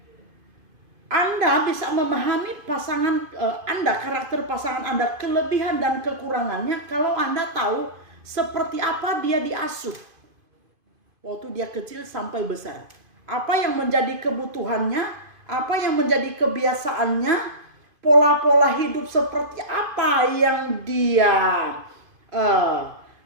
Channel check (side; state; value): left; late; 2.5 ms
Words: Anda bisa memahami pasangan Anda, karakter pasangan Anda, kelebihan dan kekurangannya kalau Anda tahu seperti apa dia diasuh waktu dia kecil sampai besar. Apa yang menjadi kebutuhannya, apa yang menjadi kebiasaannya, pola-pola hidup seperti apa yang dia